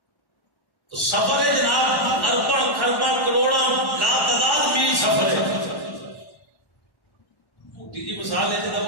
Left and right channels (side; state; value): right; late; 1.1 ms